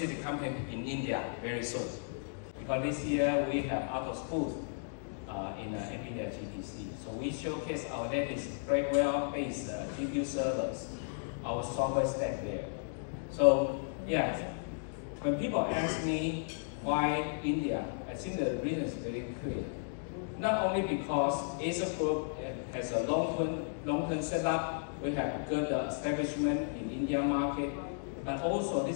company in India very soon. Because this year we have Atos booth in NVIDIA GTC. So we showcase our latest Blackwell-based GPU servers, our software stack there. So yes, when people ask me why India, I think the reason is very clear. Not only because Acer Group has a long-term setup, we have good establishment in India market, but also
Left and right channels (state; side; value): silent; right; digital silence